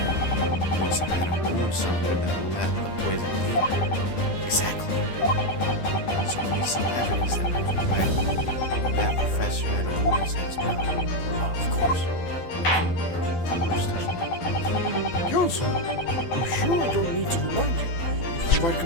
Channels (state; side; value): late; right; 12 ms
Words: he must have had a wound somewhere that let the poison in. Exactly. So we need some evidence that would provide that professor had a wound inside his mouth. Oh, of course. Just touch me. Counsel, I'm sure I don't need to remind you. You provide